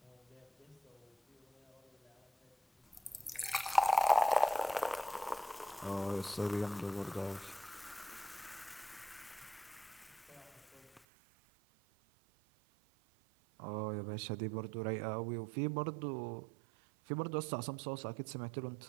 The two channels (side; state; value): left; drops out; at 11.0 s